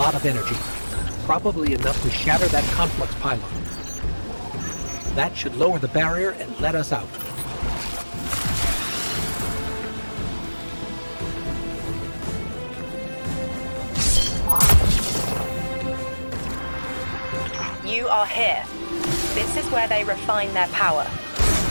of energy, probably enough to shatter that conflux pylon. That should lower the barrier and let us out. You are here. This is where they refine their power.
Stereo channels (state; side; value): inverted; both; correlation -1.00